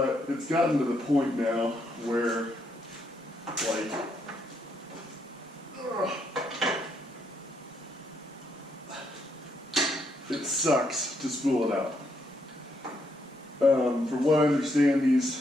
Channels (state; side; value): normal; both; correlation 0.76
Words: it's gotten to the point now where, like, it sucks to spool it out. From what I understand,